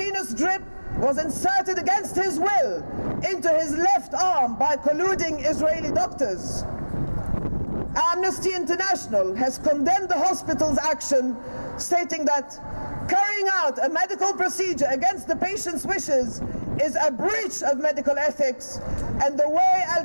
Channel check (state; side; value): inverted; both; correlation -1.00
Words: drip was inserted against his will into his left arm by colluding Israeli doctors. Amnesty International has condemned the hospital's action, stating that carrying out a medical procedure against the patient's wishes is a breach of medical ethics, and the way